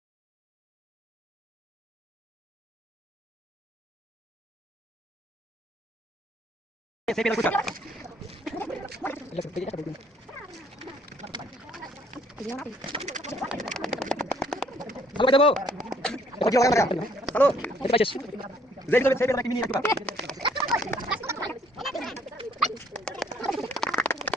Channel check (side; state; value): both; normal; correlation 0.63